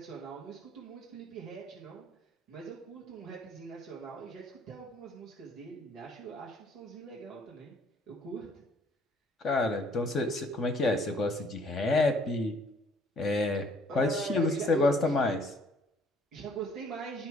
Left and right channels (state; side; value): normal; both; correlation 0.60